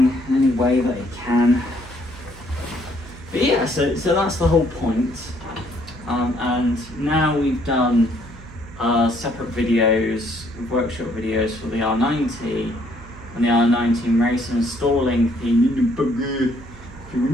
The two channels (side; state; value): right; noise; hum, 18 dB below the sound